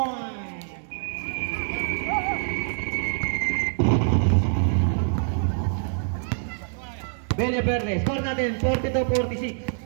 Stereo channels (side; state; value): left; silent; 61 dB below the other